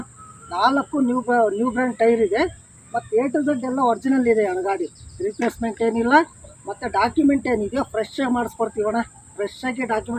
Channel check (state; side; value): identical; both; correlation 1.00